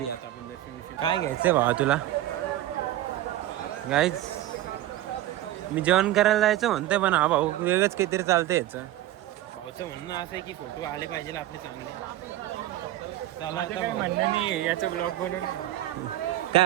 आहे. आता आपण दर्शन काय घ्यायचंय भावा तुला? गाईज मी जेवण करायला जायचं म्हणतोय, पण हा भाऊ वेगळंच काहीतरी चालतंय याचं. भाऊचं म्हणणं असं आहे की फोटो आले पाहिजे आपले चांगले. चला आता काय म्हणणं नाही याचं ब्लॉग बनवून.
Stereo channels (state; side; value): quieter; left; 14.5 dB